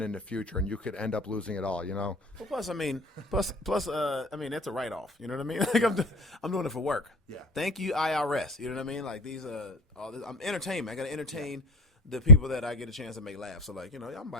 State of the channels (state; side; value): normal; both; correlation 0.18